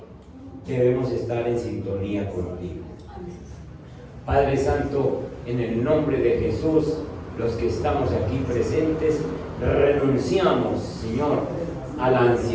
debemos estar en sintonía contigo. Padre Santo, en el nombre de Jesús, los que estamos aquí presentes, renunciamos, Señor, a la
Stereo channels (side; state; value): both; identical; correlation 1.00